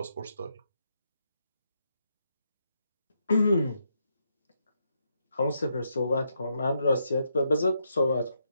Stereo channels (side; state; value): both; inverted; correlation -0.79